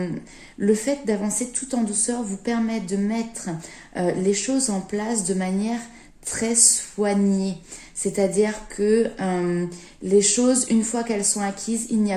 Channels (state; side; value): identical; both; correlation 1.00